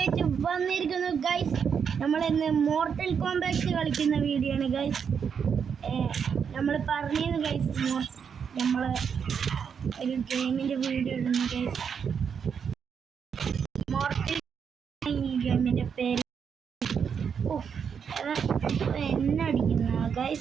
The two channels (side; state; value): left; quieter; 6.9 dB